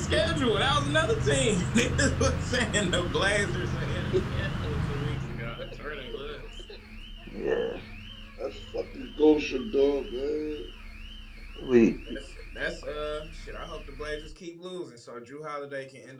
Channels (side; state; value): both; identical; correlation 1.00